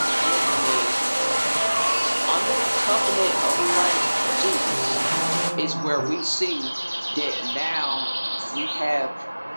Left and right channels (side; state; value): both; inverted; correlation -1.00